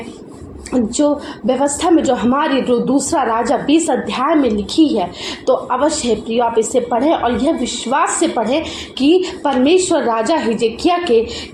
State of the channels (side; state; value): both; identical; correlation 1.00